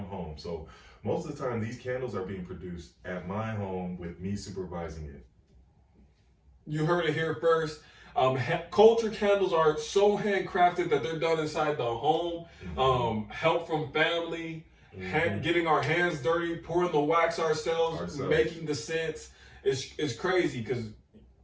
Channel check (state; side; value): identical; both; correlation 1.00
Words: home. So most of the time, these candles are being produced at my home with me supervising it. You heard it here first. Culture Candles are so handcrafted that they're done inside the home. Help from family, getting our hands dirty, pouring the wax ourselves. Making the scents. It's crazy, because